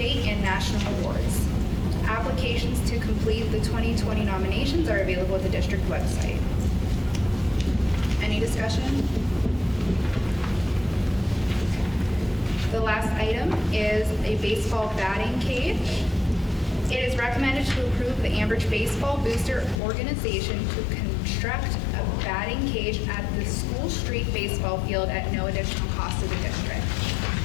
and national awards. Applications to complete the 2020 nominations are available at the district website. Any discussion? The last item is a baseball batting cage. It is recommended to approve the Ambridge Baseball Booster Organization to construct a batting cage at the School Street baseball field at no additional cost to the district.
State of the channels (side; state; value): right; drops out; at 19.8 s